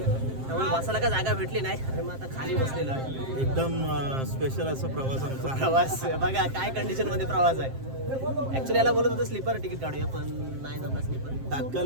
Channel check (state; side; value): late; left; 7.6 ms